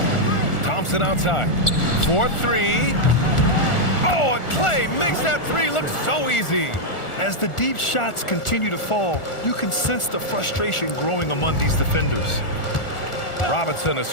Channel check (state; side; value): late; right; 1.4 ms